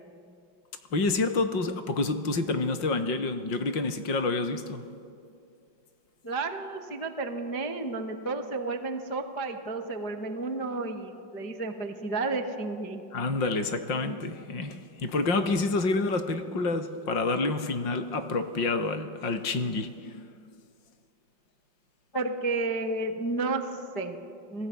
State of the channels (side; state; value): right; late; 5.6 ms